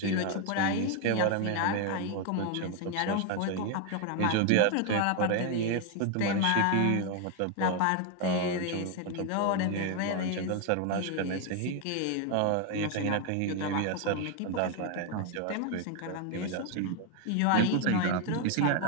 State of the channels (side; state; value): both; different; correlation 0.01